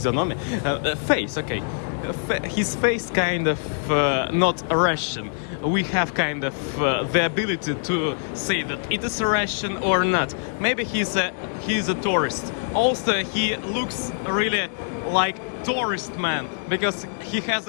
Face, okay. His face kind of not Russian. We have kind of the ability to say that it is Russian or not. Maybe he's a tourist. Also, he looks really like tourist man, because he has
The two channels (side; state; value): right; silent; digital silence